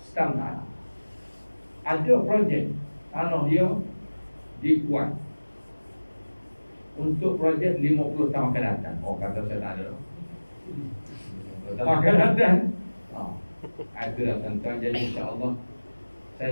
stam tanah. Ada projek tanah dia dikuat untuk projek 50 tahun akan datang. Kata saya tak ada. Tak akan datang. Itulah tuan-tuan. Jadi insya-Allah saya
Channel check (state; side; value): inverted; both; correlation -1.00